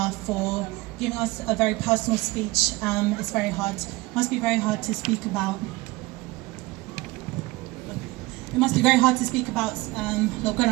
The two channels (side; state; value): left; quieter; 21.7 dB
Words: for giving us a very personal speech. It's very hard, must be very hard to speak about. It must be very hard to speak about